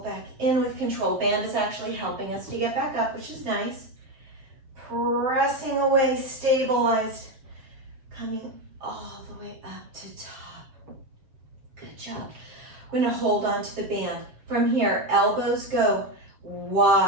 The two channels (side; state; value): left; late; 7.5 ms